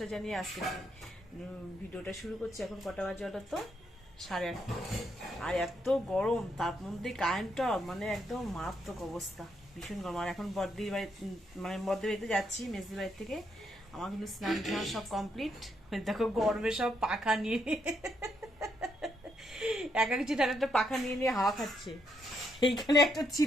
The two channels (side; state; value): both; normal; correlation 0.77